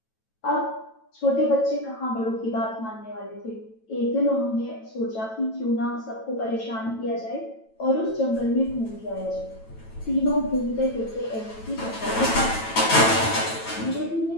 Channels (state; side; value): late; right; 9.1 ms